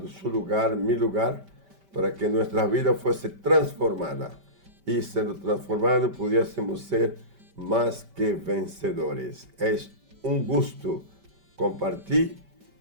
su lugar, mi lugar, para que nuestra vida fuese transformada y siendo transformada pudiésemos ser más que vencedores. Es un gusto compartir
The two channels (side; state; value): left; late; 5.1 ms